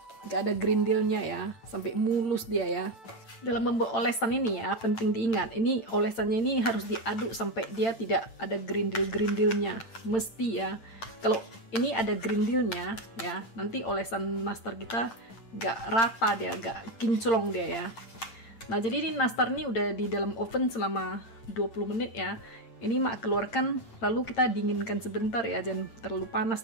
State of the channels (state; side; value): late; right; 8.8 ms